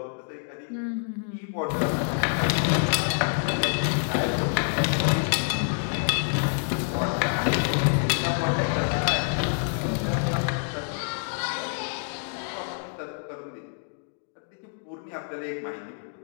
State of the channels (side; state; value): right; silent; 60 dB below the other